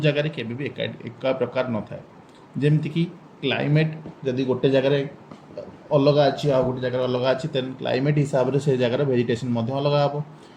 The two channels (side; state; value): both; identical; correlation 1.00